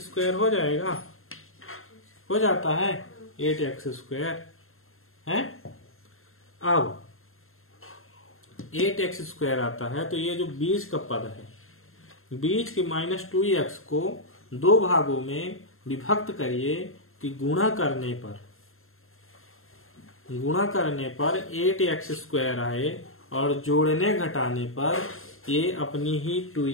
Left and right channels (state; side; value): late; right; 0.61 ms